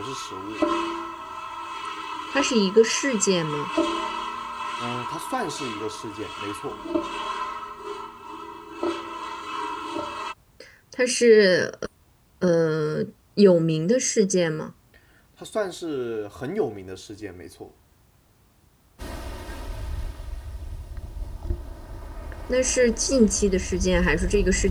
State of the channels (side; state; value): both; identical; correlation 1.00